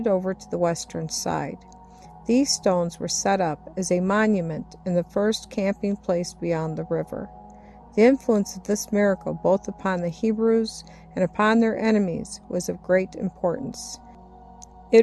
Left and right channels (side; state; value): both; identical; correlation 1.00